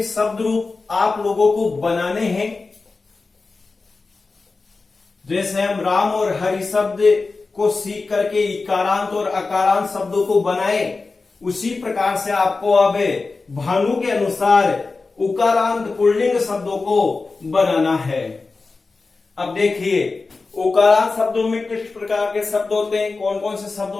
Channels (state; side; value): quieter; right; 3.9 dB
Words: शब्द रूप आप लोगों को बनाने हैं। जैसे हम राम और हरि शब्द को सीख करके इकारांत और अकारांत शब्दों को बनाए, उसी प्रकार से आपको अब भानु के अनुसार उकारांत पुल्लिंग शब्दों को बनाना है। अब देखिए उकारांत शब्दों में किस प्रकार के शब्द होते हैं, कौन कौन से शब्द